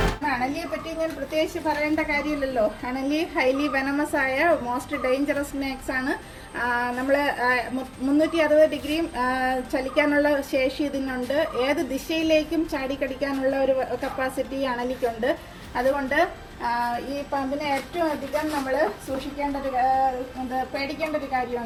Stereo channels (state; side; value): identical; both; correlation 1.00